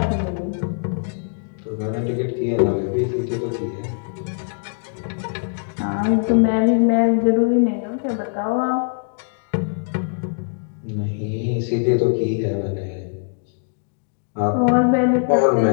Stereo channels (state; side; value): silent; right; digital silence